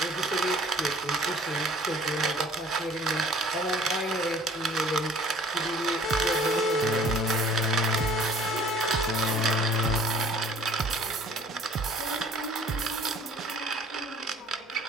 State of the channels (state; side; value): normal; both; correlation 0.52